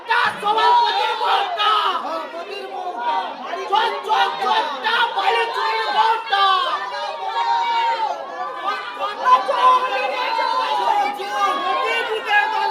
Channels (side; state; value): both; identical; correlation 1.00